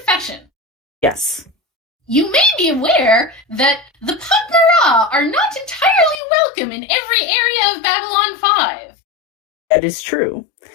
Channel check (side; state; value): right; drops out; at 6.2 s